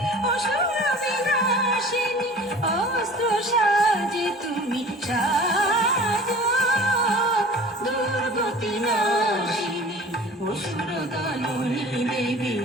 অসুর বিনাশিনী অস্ত্র সাজে তুমি সাজো দুর্গতি নাশিনী অসুর দলনী দেবী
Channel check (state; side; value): normal; both; correlation 0.43